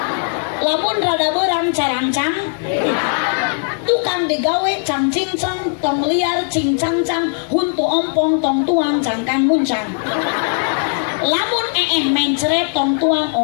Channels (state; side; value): silent; right; 66 dB below the other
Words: Lamun rada beurang carancang tukang digawe cang cincang tong liar cincang cang huntu ompong tong tuang cangkang muncang lamun mencret tong tuang